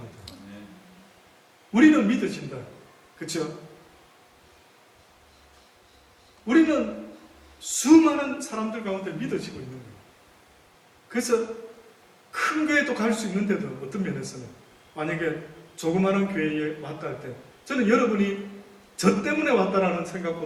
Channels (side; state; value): both; identical; correlation 1.00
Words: 우리는 믿어진다. 그렇죠? 우리는 수많은 사람들 가운데 믿어지고 있는 거예요. 그래서 큰 교회도 갈 수 있는데도 어떤 면에서는 만약에 조그마한 교회에 왔다 할 때 저는 여러분이 저 때문에 왔다라는